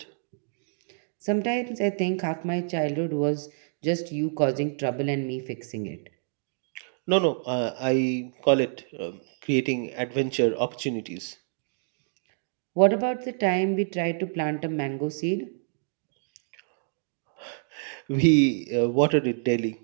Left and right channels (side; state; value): left; silent; digital silence